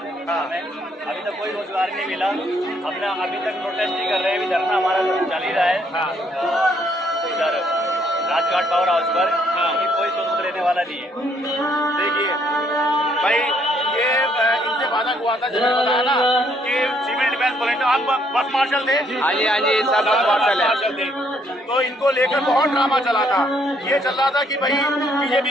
हमें अभी तक कोई रोजगार नहीं मिला। अपना अभी तक प्रोटेस्ट ही कर रहे हैं। अभी धरना हमारा चल ही रहा है इधर राजघाट पावर हाउस पर। कोई सबूत लेने वाला नहीं है। देखिए भाई, ये इनसे वादा हुआ था, जिन्होंने बताया ना कि सिविल डिफेंस वॉलंटियर, आप बस मार्शल थे। हाँ जी सब बस मार्शल थे। तो इनको लेकर बहुत ड्रामा चला था। ये चल रहा था कि भाई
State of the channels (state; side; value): normal; both; correlation 0.69